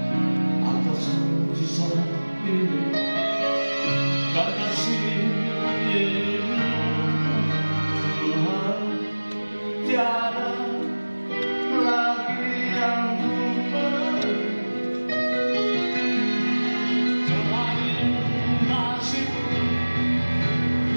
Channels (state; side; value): inverted; both; correlation -1.00